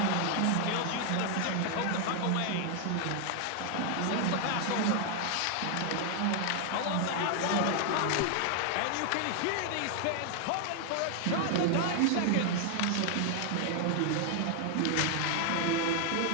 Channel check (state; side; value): different; both; correlation 0.00